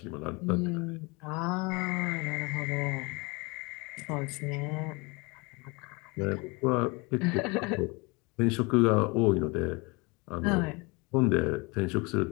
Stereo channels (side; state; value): right; quieter; 27.6 dB